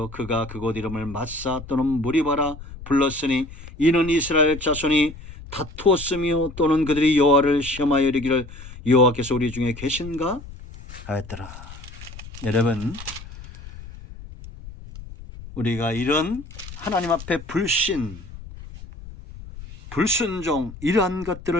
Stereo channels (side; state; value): left; noise; rumble, 15 dB below the sound